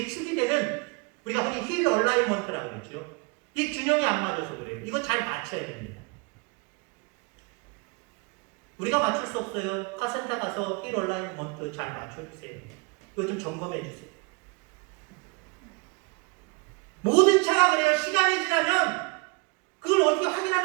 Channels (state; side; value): quieter; left; 30.0 dB